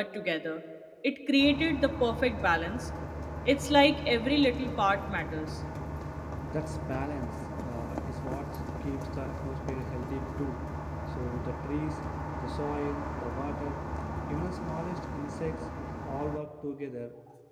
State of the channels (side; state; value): both; identical; correlation 1.00